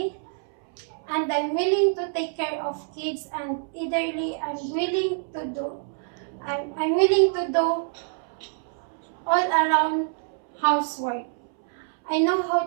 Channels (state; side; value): silent; left; 61 dB below the other